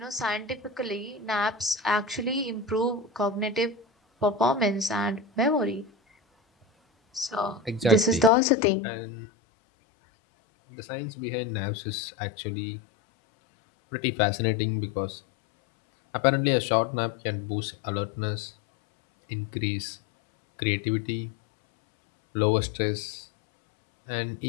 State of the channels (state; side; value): drops out; right; at 8.3 s